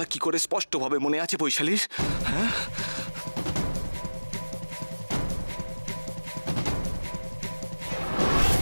কি করে স্পষ্টভাবে মনে আছে বৈশালীর? হ্যাঁ,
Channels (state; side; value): inverted; both; correlation -1.00